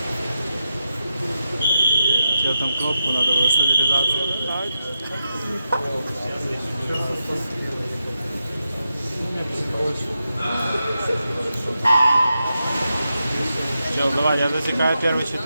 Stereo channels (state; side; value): inverted; both; correlation -0.88